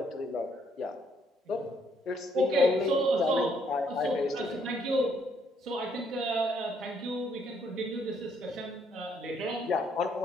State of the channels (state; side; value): normal; both; correlation 0.69